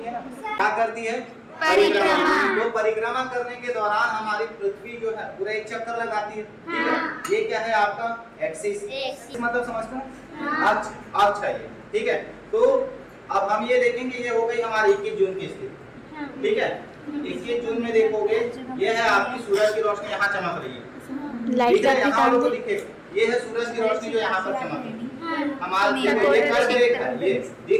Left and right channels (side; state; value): both; identical; correlation 1.00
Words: है ना क्या करती है, परिक्रमा। तो परिक्रमा करने के दौरान हमारी पृथ्वी जो है पूरा एक चक्कर लगाती है, ठीक है। ये क्या है आपका एक्सिस, मतलब समझते हैं अक्ष है ये, ठीक है। तो अब हम ये देखेंगे, ये हो गई हमारी 21 जून की स्थिति, ठीक है। 21 जून में देखोगे ये है आपकी सूरज की रोशनी यहाँ चमक रही है, ठीक है। यहाँ लोगों को दिखे ये है सूरज की रोशनी जो यहाँ पर चमक रही है, हमारे ये कर्क रेखा, ये